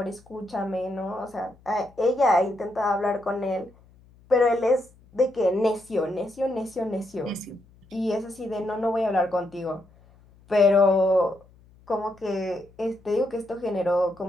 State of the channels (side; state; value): left; noise; hum, 28 dB below the sound